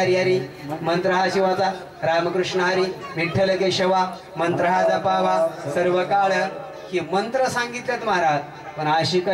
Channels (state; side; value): identical; both; correlation 1.00